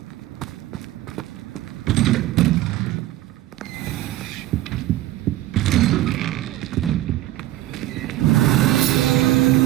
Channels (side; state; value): left; quieter; 14.9 dB